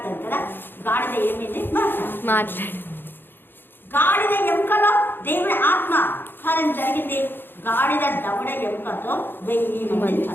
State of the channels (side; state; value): right; late; 0.099 ms